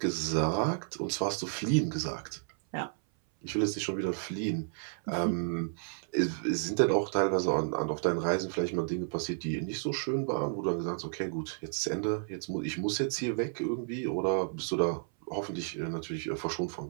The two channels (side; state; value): left; silent; 56 dB below the other